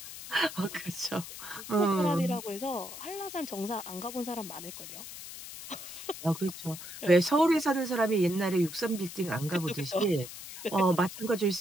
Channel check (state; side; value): noise; left; hiss, 11 dB below the sound